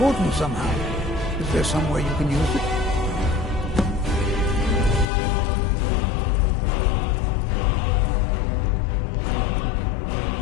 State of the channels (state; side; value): drops out; right; at 5.1 s